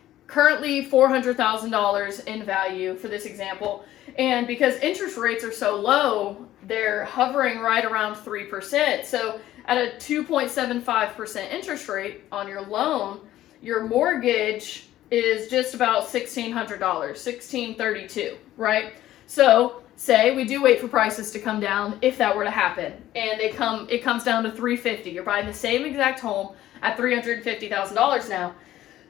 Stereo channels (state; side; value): quieter; right; 13.8 dB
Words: currently $400,000 in value for this example. And because interest rates are so low, they're hovering right around 3%. So at a 2.75% interest rate on your loan, your mortgage is just about $1,600, $1,632, right? So say we do wait for prices to come down, if that were to happen, and it comes down to $350. You're buying the same exact home at $350,000 now.